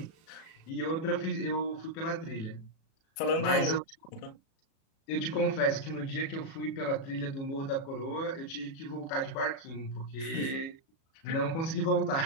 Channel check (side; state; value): right; late; 37 ms